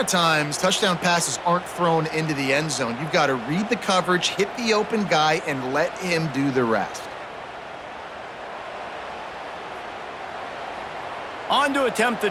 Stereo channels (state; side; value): identical; both; correlation 1.00